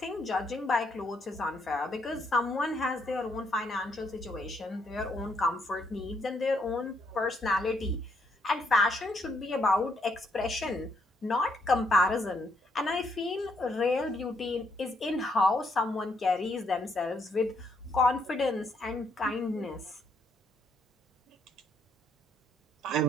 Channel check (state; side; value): normal; both; correlation 0.73